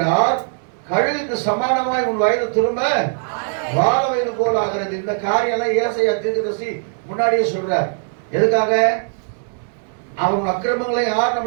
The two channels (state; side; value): silent; left; digital silence